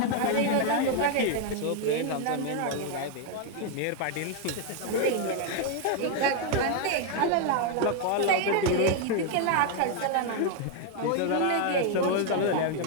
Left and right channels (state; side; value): different; both; correlation 0.01